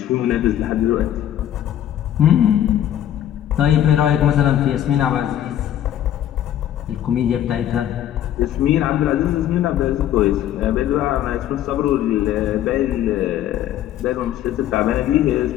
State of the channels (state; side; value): quieter; right; 11.4 dB